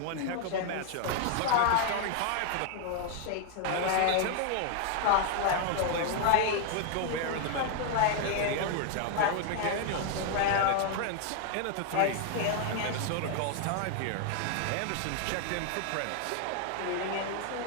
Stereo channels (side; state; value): both; different; correlation 0.00